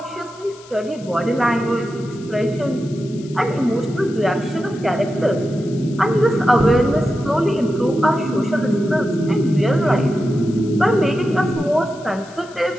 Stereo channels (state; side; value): noise; left; hiss, 23 dB below the sound